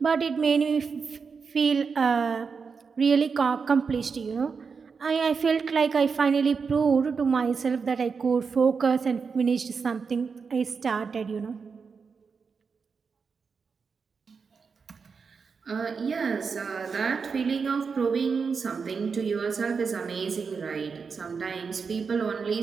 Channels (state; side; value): quieter; left; 5.4 dB